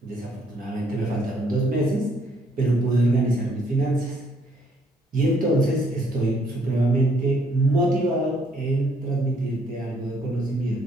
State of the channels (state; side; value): normal; both; correlation 0.67